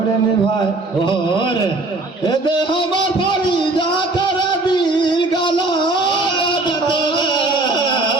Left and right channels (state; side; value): quieter; left; 3.0 dB